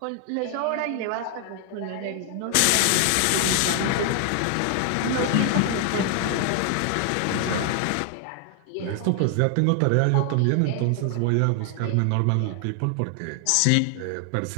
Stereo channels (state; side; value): different; both; correlation 0.00